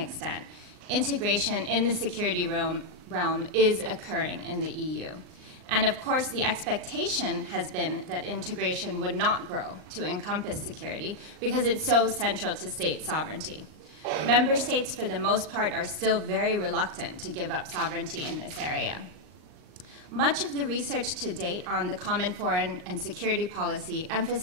integration in the security realm is occurring in the EU. And of course, the expectation has been that integration would not grow to encompass security because it's so central to state sovereignty. Member states, for the most part, are still very reluctant to give up sovereignty in this area. Much of the research to date on the common foreign and security policy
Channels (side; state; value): left; late; 39 ms